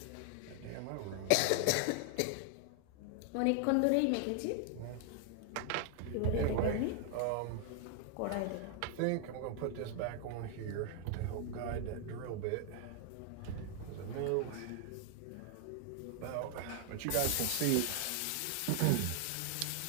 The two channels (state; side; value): different; both; correlation 0.00